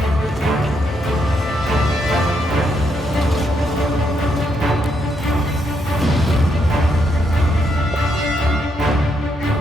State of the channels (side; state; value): both; normal; correlation 0.77